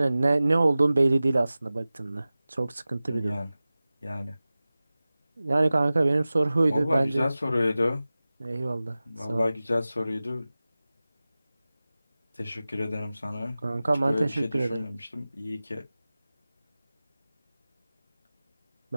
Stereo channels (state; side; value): inverted; both; correlation -0.97